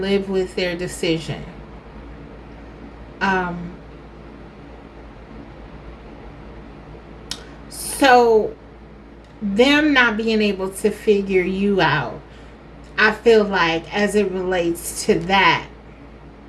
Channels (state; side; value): identical; both; correlation 1.00